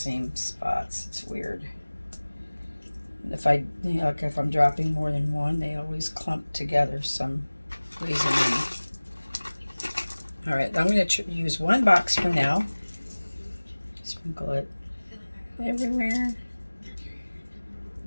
spots. It's weird. If I, like if I'm dropping more than one, they always clump together some reason. All right, I'm going to use one box for now. Sprinkle it everywhere.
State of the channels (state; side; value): inverted; both; correlation -1.00